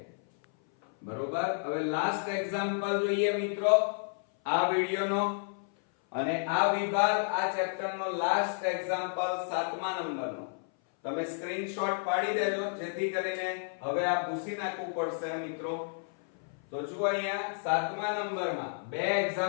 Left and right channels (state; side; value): silent; right; 57 dB below the other